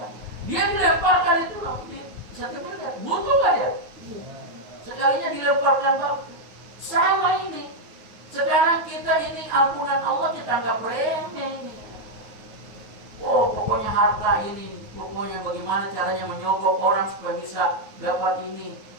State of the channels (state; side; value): late; left; 9.5 ms